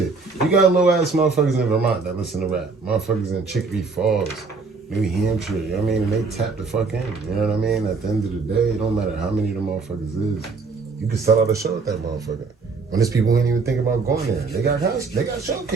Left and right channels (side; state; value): left; quieter; 4.5 dB